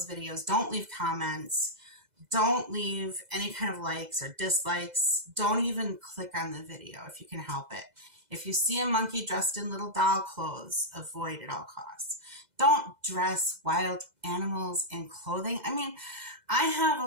videos. Don't leave comments. Don't leave any kind of likes or dislikes. Don't even click on the video if you can help it. If you see a monkey dressed in little doll clothes, avoid at all costs. Don't dress wild animals in clothing. I mean, I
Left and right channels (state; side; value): late; left; 2.0 ms